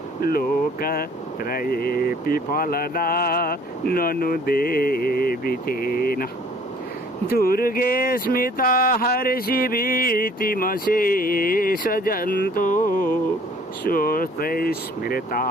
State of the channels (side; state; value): both; normal; correlation 0.56